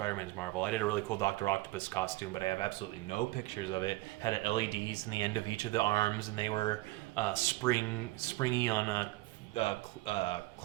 Marvel. I did a really cool Dr. Octopus costume, but I have absolutely no pictures of it. Had LEDs in the end of each of the arms, and they were springy on a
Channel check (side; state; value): left; quieter; 19.3 dB